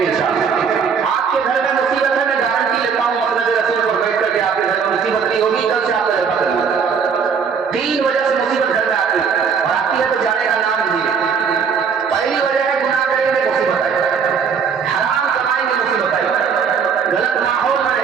इंशाअल्लाह। आपके घर में मुसीबत है, मैं गारंटी लेता हूँ मसनद रसूल पर बैठ करके आपके घर में मुसीबत नहीं होगी। कल से आपका जलसा करेंगे। 3 वजह से मुसीबत घर में आती है, और आती है तो जाने का नाम नहीं है। पहली वजह है गुनाह करेंगे मुसीबत आएगी, हराम कमाएंगे मुसीबत आएगी, गलत माहौल में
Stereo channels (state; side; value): quieter; left; 6.3 dB